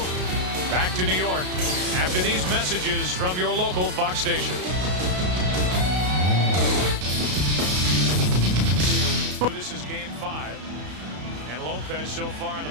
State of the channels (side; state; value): left; late; 33 ms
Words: Back to New York after these messages from your local Fox station. This is game 5. And Lopez so far in the